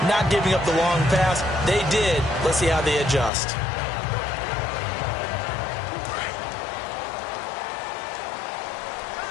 not giving up the long pass. They did. Let's see how they adjust.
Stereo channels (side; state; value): right; drops out; at 3.3 s